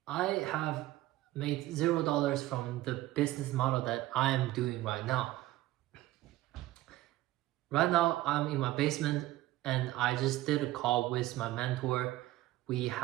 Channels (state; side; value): quieter; left; 16.3 dB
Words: I have made $0 from the business model that I am doing right now. Right now, I'm in my basement and I just did a call with my mentor. We